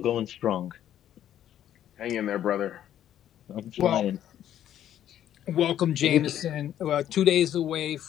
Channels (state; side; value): quieter; right; 11.1 dB